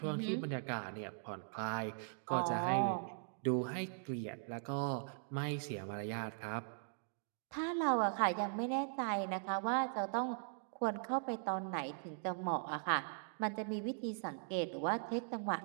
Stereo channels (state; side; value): silent; left; digital silence